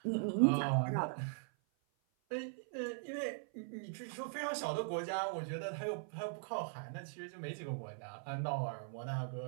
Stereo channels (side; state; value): left; silent; 51 dB below the other